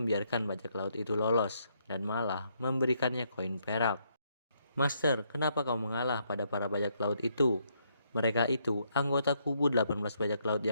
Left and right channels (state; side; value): inverted; both; correlation -0.74